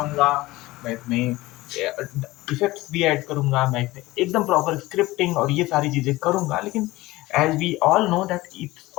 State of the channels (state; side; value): quieter; right; 19.1 dB